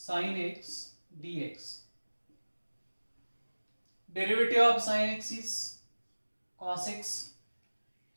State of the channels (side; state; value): both; inverted; correlation -1.00